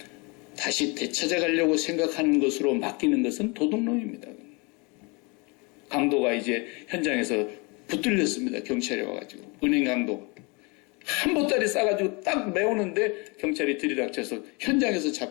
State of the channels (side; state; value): right; quieter; 29.3 dB